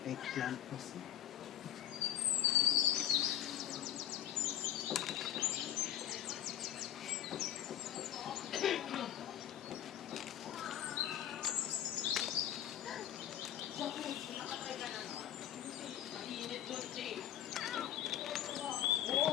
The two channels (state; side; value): quieter; right; 11.6 dB